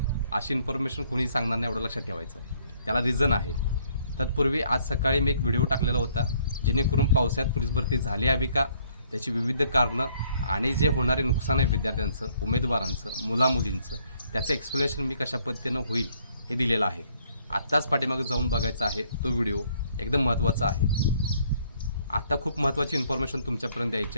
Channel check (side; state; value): both; inverted; correlation -0.65